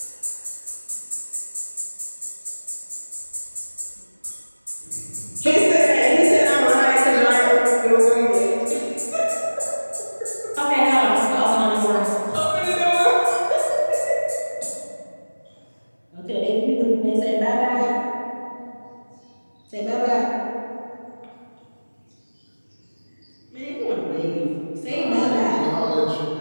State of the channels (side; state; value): both; inverted; correlation -1.00